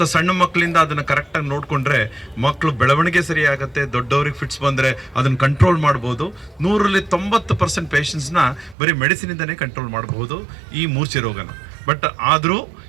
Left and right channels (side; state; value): left; drops out; at 8.8 s